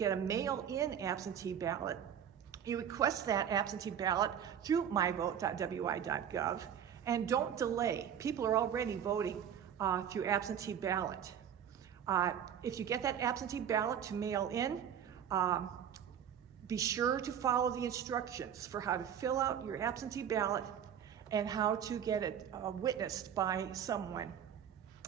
a mail-in absentee ballot. You request that absentee ballot through myvote.wi.gov, and don't delay. People are already voting through absentee ballot. If you get that absentee ballot to mail in, be sure to follow the instructions for how to fill out your absentee ballot and how to get it witnessed by someone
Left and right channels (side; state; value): left; quieter; 8.9 dB